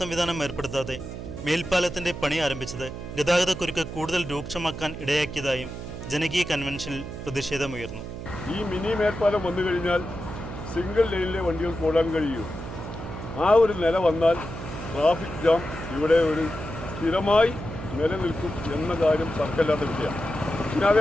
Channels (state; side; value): noise; right; hum, 9 dB below the sound